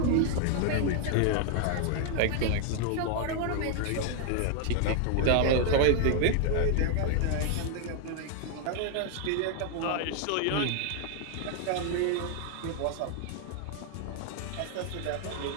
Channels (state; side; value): different; both; correlation 0.00